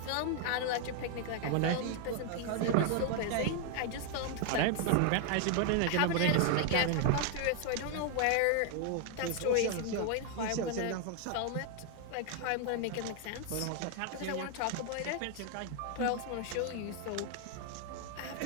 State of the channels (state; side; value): different; both; correlation 0.00